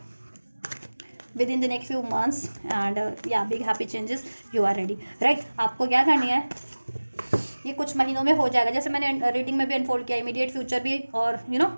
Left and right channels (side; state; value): both; inverted; correlation -1.00